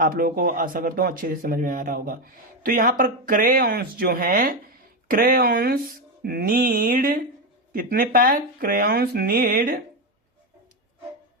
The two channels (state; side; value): normal; both; correlation 0.10